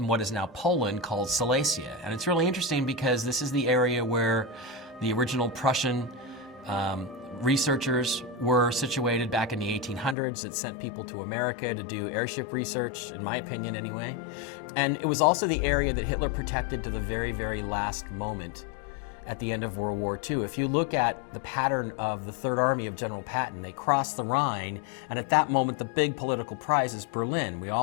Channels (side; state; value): right; drops out; at 10.2 s